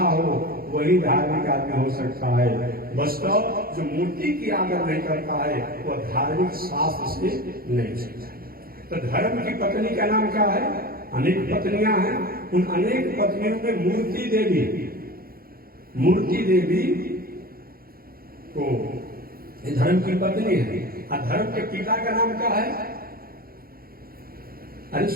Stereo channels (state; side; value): late; left; 0.43 ms